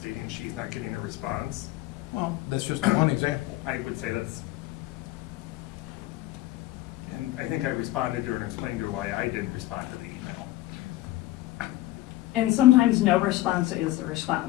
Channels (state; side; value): quieter; right; 16.5 dB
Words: she's not getting a response? Well, that's just one example. I would say that's, and I think I responded to her and explained to her why I didn't respond to the email. And sometimes no response is the